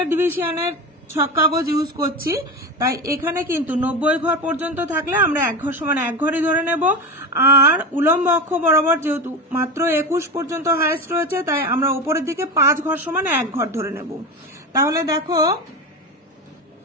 ডিভিশনের ছক কাগজ ইউজ করছি, তাই এখানে কিন্তু 90 ঘর পর্যন্ত থাকলে আমরা 1 ঘর সমান 1 ঘরই ধরে নেব। আর উলম্ব অক্ষ বরাবর যেহেতু মাত্র 21 পর্যন্ত হাইয়েস্ট রয়েছে, তাই আমরা উপরের দিকে 5 ঘর সমান 1 ঘর ধরে নেব। তাহলে দেখো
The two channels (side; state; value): both; normal; correlation 0.23